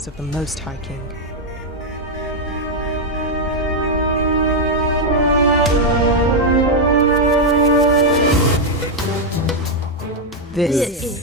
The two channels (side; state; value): both; normal; correlation 0.00